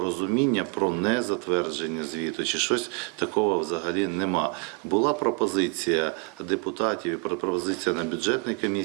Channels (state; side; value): quieter; left; 32.7 dB